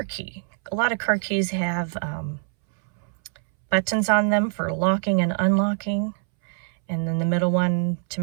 key. A lot of car keys have buttons on them for locking and unlocking, and then the middle one to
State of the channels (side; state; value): left; silent; 62 dB below the other